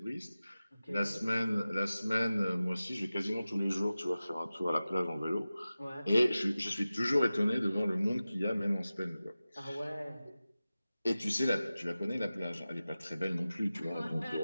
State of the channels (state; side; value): inverted; both; correlation -0.96